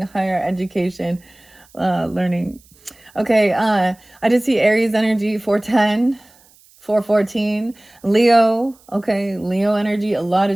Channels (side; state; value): right; noise; hiss, 29 dB below the sound